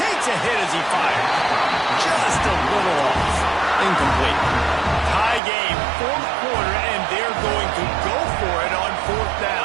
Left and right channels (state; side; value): drops out; left; at 5.4 s